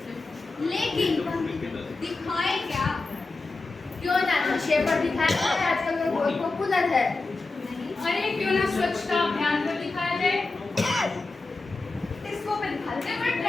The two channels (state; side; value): quieter; right; 3.5 dB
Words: लेकिन दिखाए क्या? क्यों ना नशे पर दिखाया जाए, आजकल वो बहुत पॉपुलर है। अरे क्यों ना स्वच्छता अभियान पर दिखाया जाए, इसको पे दिखाते हैं, बड़ा